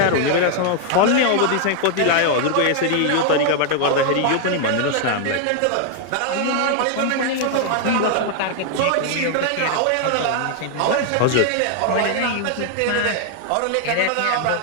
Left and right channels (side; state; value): both; different; correlation 0.00